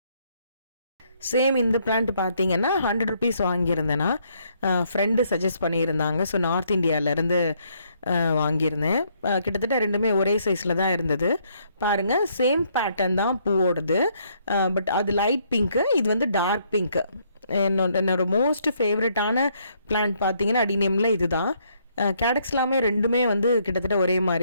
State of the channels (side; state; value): both; inverted; correlation -0.70